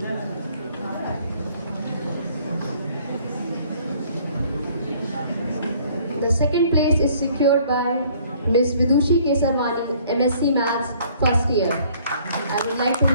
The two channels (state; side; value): inverted; both; correlation -0.59